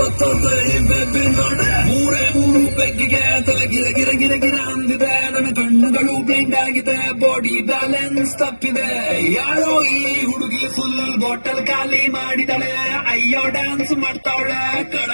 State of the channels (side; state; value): both; inverted; correlation -1.00